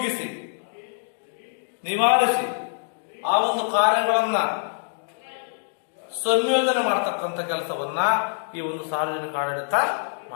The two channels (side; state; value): right; silent; digital silence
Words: ನಿವಾರಿಸಿ ಆ ಒಂದು ಕಾರ್ಯಗಳನ್ನ ಸಂಯೋಜನೆ ಮಾಡತಕ್ಕಂಥ ಕೆಲಸವನ್ನ ಈ ಒಂದು ಸಾರ್ವಜನಿಕ ಆಡಳಿತ